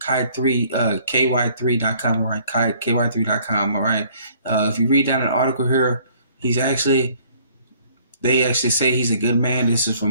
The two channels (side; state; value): both; inverted; correlation -0.59